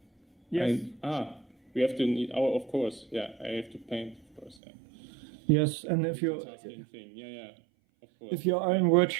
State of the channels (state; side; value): drops out; left; at 4.5 s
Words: Yes. We have to need our. Of course, yeah. I have to paint, of course. Yeah. Yes, and if you. Thing. Yeah. Of course. If you are in